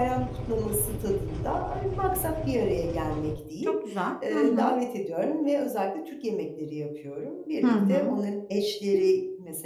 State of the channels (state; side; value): identical; both; correlation 1.00